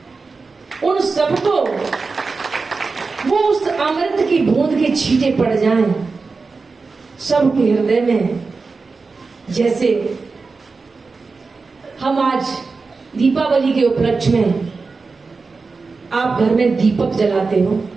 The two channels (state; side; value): quieter; left; 4.3 dB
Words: उन सबको वो उस अमृत की बूंद के छींटे पड़ जाएं सबके हृदय में। जैसे हम आज दीपावली के उपलक्ष्य में आप घर में दीपक जलाते हो।